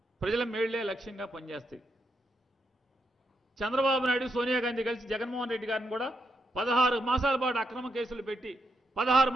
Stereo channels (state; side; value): normal; both; correlation 0.82